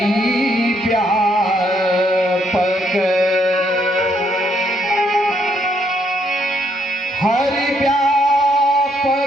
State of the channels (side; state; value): both; normal; correlation 0.72